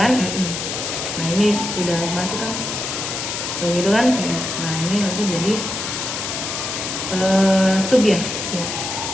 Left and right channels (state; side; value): noise; left; hiss, 4 dB below the sound